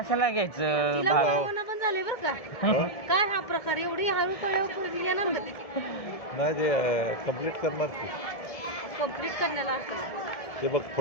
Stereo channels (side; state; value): right; late; 1.7 ms